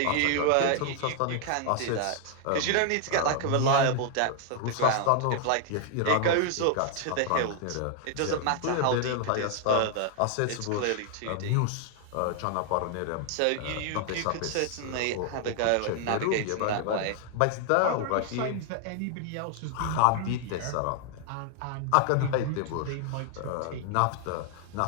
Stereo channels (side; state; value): both; different; correlation 0.00